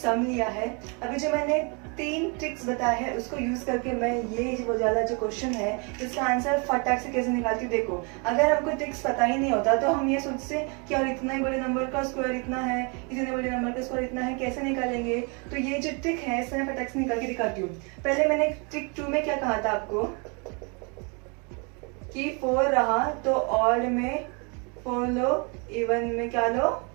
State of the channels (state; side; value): quieter; left; 33.6 dB